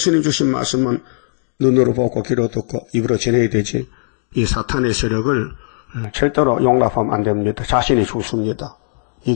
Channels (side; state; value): right; silent; digital silence